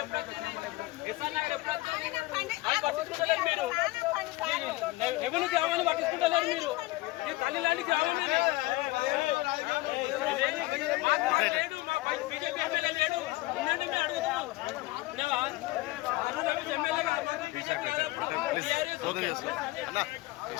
ఎప్పుడు వచ్చింది, ఎస్ఆర్ నగర్ ఎప్పుడు వచ్చింది, అది పట్టించుకుంటలేరు మీరు. రెవెన్యూ గ్రామాన్ని పట్టించుకుంటలేరు మీరు. ఈ తల్లి లాంటి గ్రామం లేడు, మా బీజేపీ ఎమ్మెల్యే లేడు, ఉండండి మేము అడుగుతున్నాం. ఎమ్మెల్యే కాదు, బీజేపీ కాదు.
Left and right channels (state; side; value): quieter; right; 19.9 dB